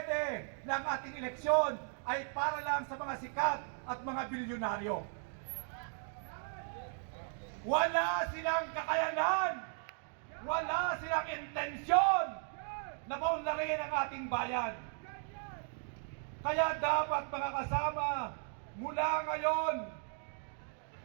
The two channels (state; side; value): silent; left; 53 dB below the other